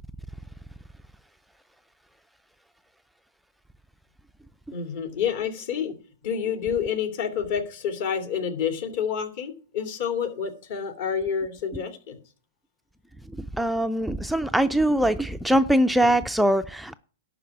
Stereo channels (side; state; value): both; normal; correlation 0.61